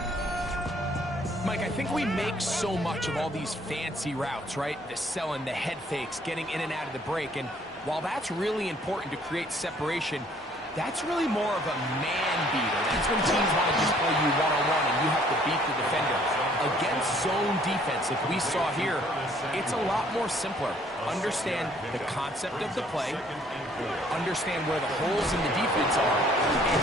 Mike, I think we make so much of all these fancy routes, right? The selling, the head fakes, getting in and out of the break. And while that's really important to create separation, that's really more of a man beater. That's when teams want to just play you one-on-one and you have to beat the defender. Against zone defense, like we saw here, it's a lot more simpler. Understand the concept of the play, understand where the holes in the defense are, and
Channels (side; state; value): both; normal; correlation 0.61